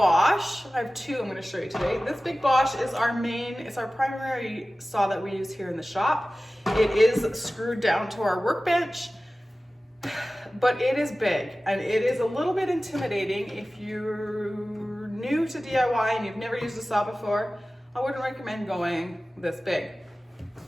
I have two I'm going to show you today. This big Bosch is it's our primary saw that we use here in the shop. It is screwed down to our workbench, but it is big and it is a little bit intimidating. If you're new to DIY and you've never used a saw before, I wouldn't recommend going this big.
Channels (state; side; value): normal; both; correlation 0.96